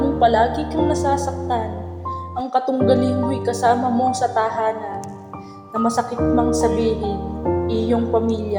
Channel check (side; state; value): both; identical; correlation 1.00